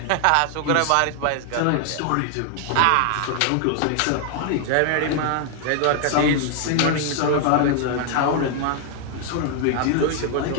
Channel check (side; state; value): both; different; correlation 0.00